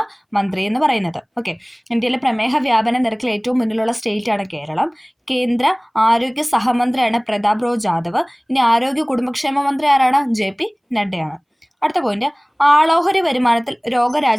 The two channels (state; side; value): identical; both; correlation 1.00